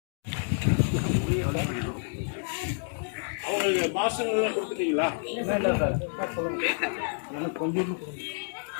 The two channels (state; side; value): silent; right; 59 dB below the other